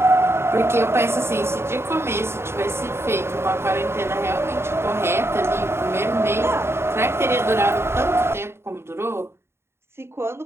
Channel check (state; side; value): late; left; 0.12 ms